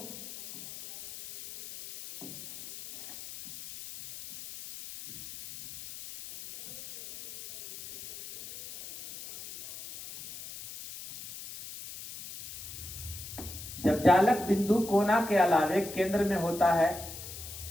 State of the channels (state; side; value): noise; left; hiss, 13 dB below the sound